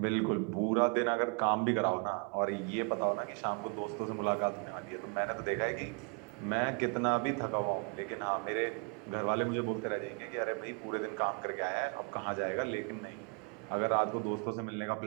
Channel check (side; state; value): left; quieter; 36.2 dB